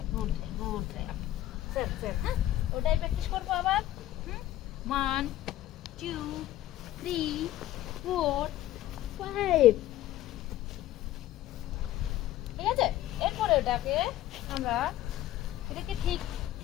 good try, good try. Same same, হ্যাঁ ওটাই প্র্যাকটিস করবো আবার। 1 2 3 4 5, ঠিক আছে। এরপরে ওটাকে আমরা এটাকে ঠিক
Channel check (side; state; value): right; quieter; 14.0 dB